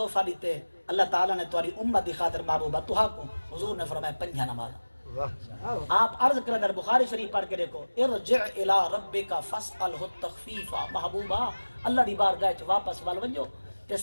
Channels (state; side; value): inverted; both; correlation -1.00